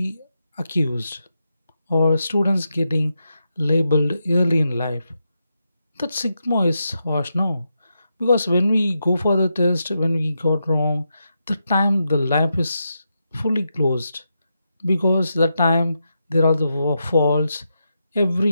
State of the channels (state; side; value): inverted; both; correlation -0.85